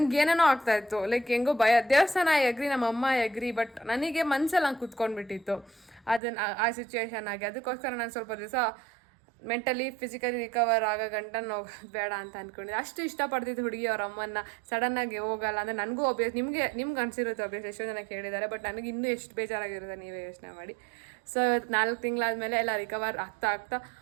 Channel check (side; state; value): left; drops out; at 6.2 s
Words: ಏನೇನೋ ಆಗ್ತಾಯಿತ್ತು. ಲೈಕ್ ಹೆಂಗೋ ಭಯ. ದೇವಸ್ಥಾನ ಎಗ್ರಿ, ನಮ್ಮ ಅಮ್ಮ ಎಗ್ರಿ, ಬಟ್ ನನಗೆ ಮನಸ್ಸಲ್ಲಿ ಹಂಗೆ ಕುತ್ಕೊಂಡ್ಬಿಟ್ಟಿತ್ತು ಅದನ್ನು ಆ ಸಿಚುವೇಶನ್ ಆಗಿ. ಅದಕ್ಕೋಸ್ಕರ ನಾನು ಸ್ವಲ್ಪ ದಿವಸ ಮೆಂಟಲಿ ಫಿಸಿಕಲಿ ರಿಕವರ್ ಆಗೋ ಗಂಟ ಬೇಡ ಅಂತ ಅಂದ್ಕೊಂಡಿದ್ದೆ. ಅಷ್ಟು ಇಷ್ಟಪಡ್ತಿದ್ದು ಹುಡುಗಿ ಅವ್ರ ಅಮ್ಮನ್ನ. ಸಡನ್ನಾಗಿ ಹೋಗಲ್ಲ ಅಂದರೆ ನನಗೂ ನಿಮ್ಗೆ ಅನಿಸಿರುತ್ತೆ ಒಬ್ಬಿಯಸ್. ಎಷ್ಟೋ ಜನ ಕೇಳಿದ್ದಾರೆ, ಬಟ್ ನನಗೆ ಇನ್ನೂ ಎಷ್ಟು ಬೇಜಾರಾಗಿರುತ್ತೆ ನೀವೇ ಯೋಚನೆ ಮಾಡಿ. ಸೊ 4 ತಿಂಗಳಾದಮೇಲೆ ಎಲ್ಲ ರಿಕವರ್ ಆಗ್ತಾ